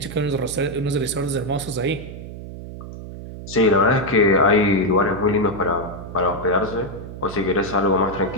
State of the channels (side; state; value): right; noise; hum, 11 dB below the sound